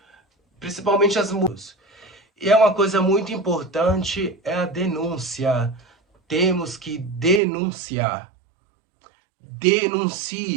principalmente as mulheres. E é uma coisa muito importante, é a denúncia. Temos que denunciar.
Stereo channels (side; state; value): left; drops out; at 7.4 s